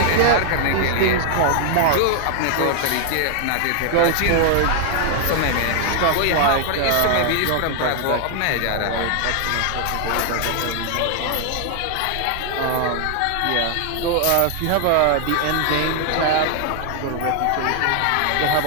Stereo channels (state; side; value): different; both; correlation 0.00